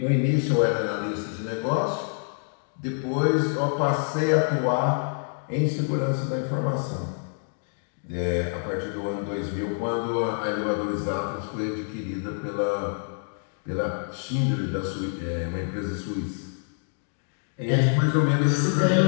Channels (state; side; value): silent; right; 57 dB below the other